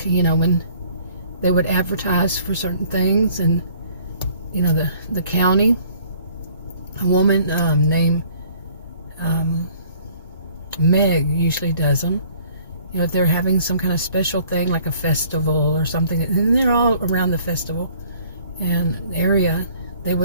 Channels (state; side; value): inverted; both; correlation -0.56